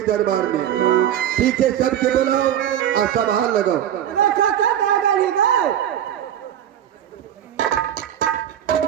दरबार में। ठीक है, सबके बुलाओ और सभा लगाओ।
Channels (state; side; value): quieter; left; 10.6 dB